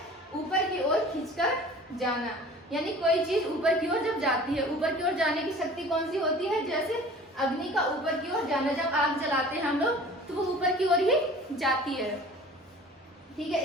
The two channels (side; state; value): both; normal; correlation 0.45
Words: ऊपर की ओर खींचकर जाना, यानी कोई चीज ऊपर की ओर जब जाती है, ऊपर की ओर जाने की शक्ति कौन सी होती है? जैसे अग्नि का ऊपर की ओर जाना, जब आग जलाते हैं हम लोग तो वो ऊपर की ओर ही जाती है। ठीक है।